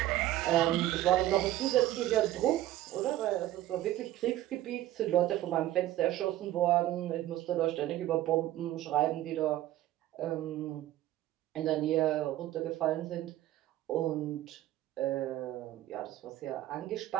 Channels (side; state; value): left; quieter; 14.5 dB